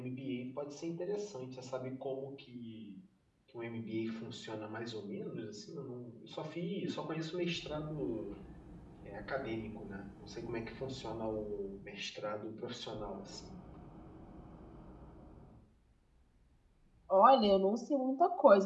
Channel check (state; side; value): identical; both; correlation 1.00